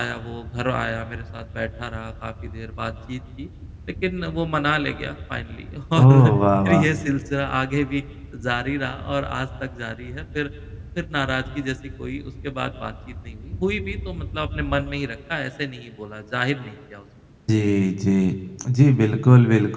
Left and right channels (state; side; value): identical; both; correlation 1.00